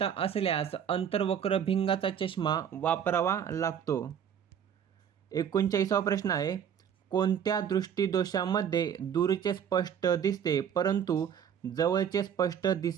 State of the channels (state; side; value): quieter; left; 8.4 dB